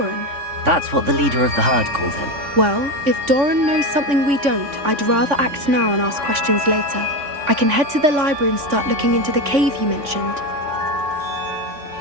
That's what the leader of the herd called him. Well, if Doran knows something we don't, I'd rather act now and ask questions later. I can head to the library and start looking into the cave you mentioned.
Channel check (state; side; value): late; left; 3.5 ms